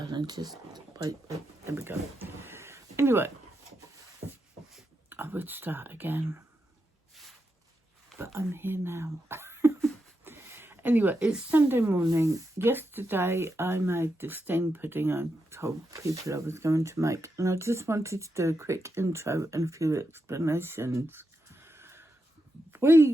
Just wait, there we go. Anyway, I would start again, but I'm here now. Anyway, it's Sunday morning. Yesterday I made the steamed pudding I told people I was going to make, and I just wanted to do a quick intro and a few explanations.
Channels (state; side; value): normal; both; correlation 0.86